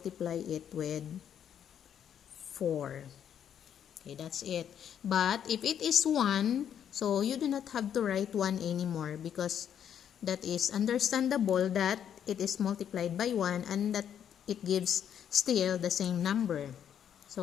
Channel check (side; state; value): right; quieter; 9.1 dB